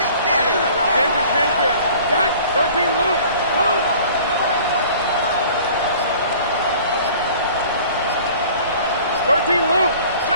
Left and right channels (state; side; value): inverted; both; correlation -0.49